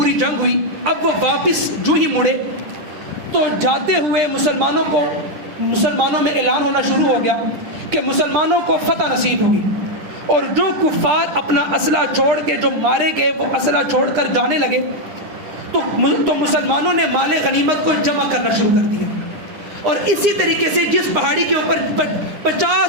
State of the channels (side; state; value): left; late; 9.8 ms